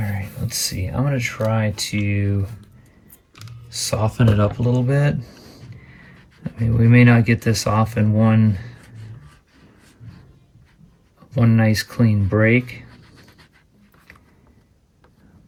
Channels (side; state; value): both; identical; correlation 1.00